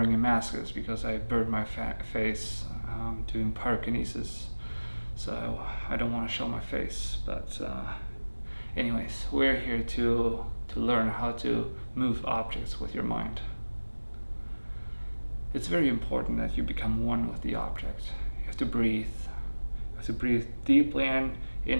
a mask is because I burned my face doing pyrokinesis, so I don't want to show my face, but anyways, we're here to learn how to move objects with your mind. It's very important that you become one with the object. You have to breathe. You have to breathe deeply in,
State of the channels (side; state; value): both; inverted; correlation -1.00